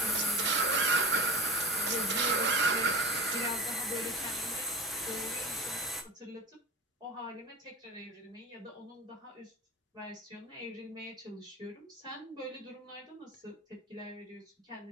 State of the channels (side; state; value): both; normal; correlation 0.35